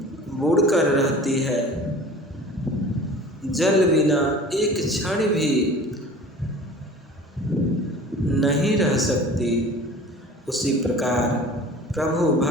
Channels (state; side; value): normal; both; correlation 0.42